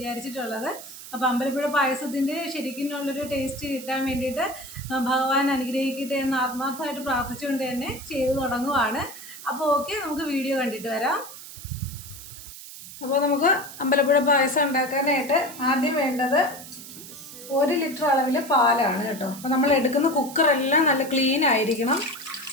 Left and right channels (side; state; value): right; noise; hiss, 14 dB below the sound